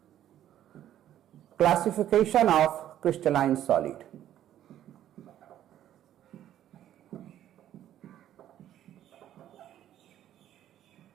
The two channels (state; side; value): quieter; left; 11.7 dB